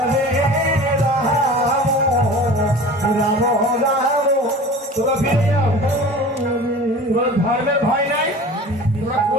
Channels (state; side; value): normal; both; correlation 0.39